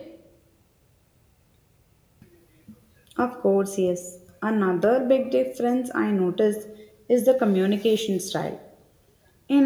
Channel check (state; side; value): identical; both; correlation 1.00